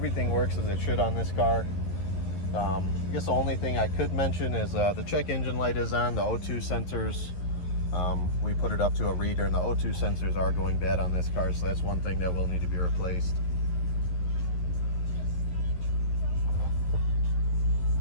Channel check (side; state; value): right; late; 11 ms